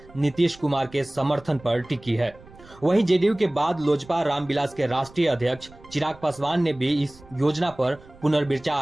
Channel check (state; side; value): noise; right; rumble, 23 dB below the sound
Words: नीतीश कुमार के समर्थन पर टिकी है। वहीं जेडीयू के बाद लोजपा रामविलास के राष्ट्रीय अध्यक्ष चिराग पासवान ने भी इस योजना पर